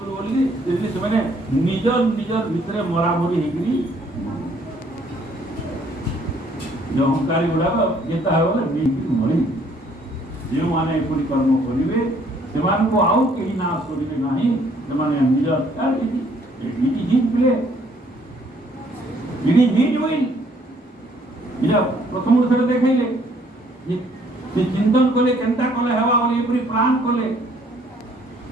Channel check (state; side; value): normal; both; correlation 0.63